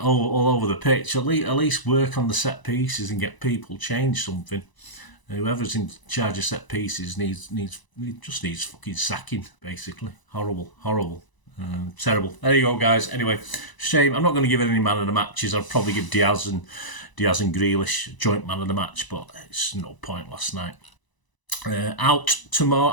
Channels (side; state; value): right; late; 1.0 ms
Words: over the pitch, at least work on the set pieces and get people change something. Whoever's in charge of set pieces needs fucking sacking, basically. Horrible. Terrible. There you go, guys. Anyway, shame. I'm not going to give it any man of the matches. I'll probably give Diaz and Grealish joint man of the match, but it's no point last night. Out tomorrow.